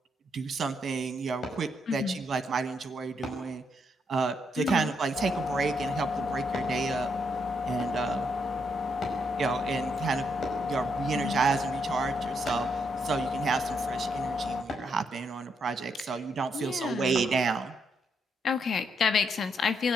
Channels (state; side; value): normal; both; correlation 0.77